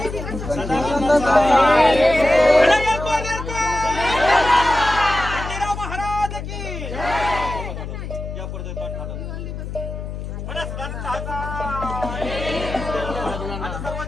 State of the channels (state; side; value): noise; left; hum, 7 dB below the sound